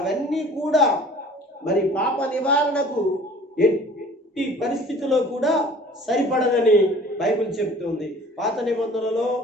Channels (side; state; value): both; normal; correlation 0.49